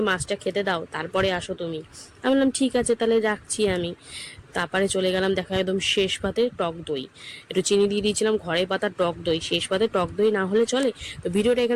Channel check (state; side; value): identical; both; correlation 1.00